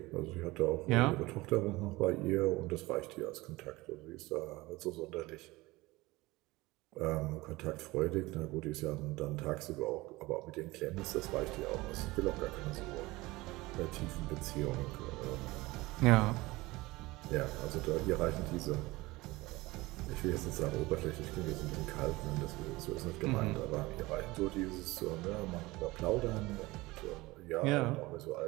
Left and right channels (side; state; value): left; quieter; 20.8 dB